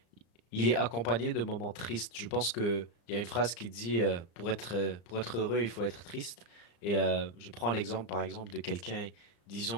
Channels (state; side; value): late; right; 34 ms